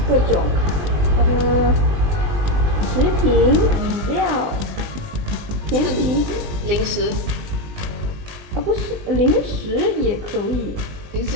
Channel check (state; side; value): late; left; 20 ms